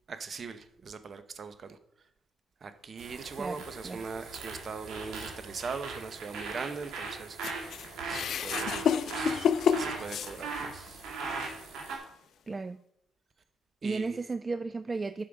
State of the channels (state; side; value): normal; both; correlation 0.72